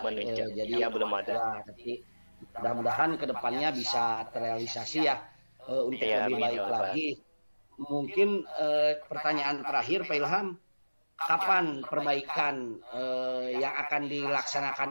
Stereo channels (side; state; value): both; inverted; correlation -1.00